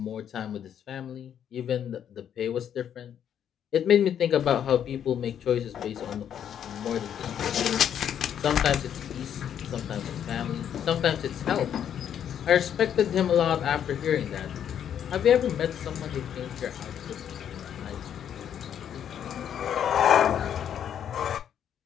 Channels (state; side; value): quieter; right; 9.2 dB